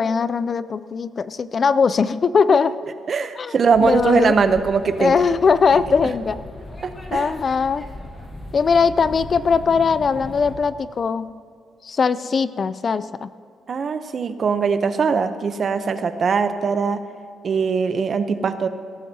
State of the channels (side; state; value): both; normal; correlation 0.81